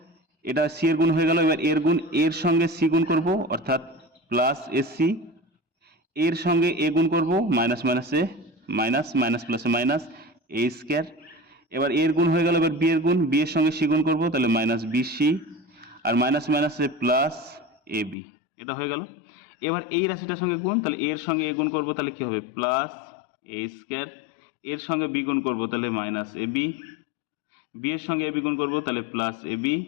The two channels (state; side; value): drops out; right; at 18.2 s